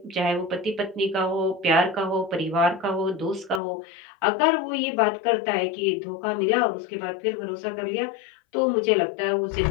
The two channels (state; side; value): drops out; right; at 3.6 s